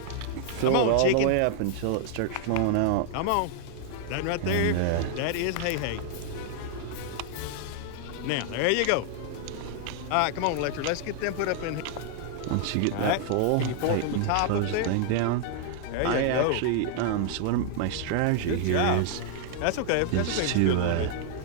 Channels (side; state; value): both; different; correlation 0.00